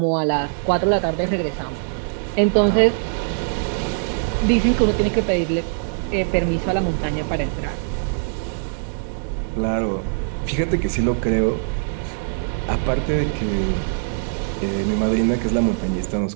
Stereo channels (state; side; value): silent; left; 64 dB below the other